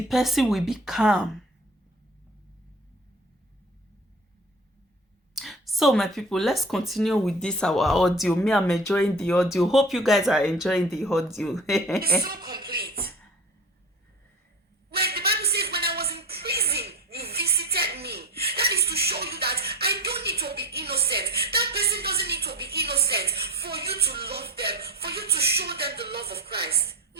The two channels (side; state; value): both; normal; correlation 0.36